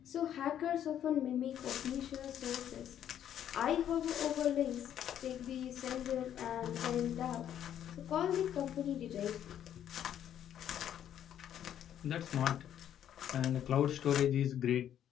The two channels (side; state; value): right; quieter; 10.3 dB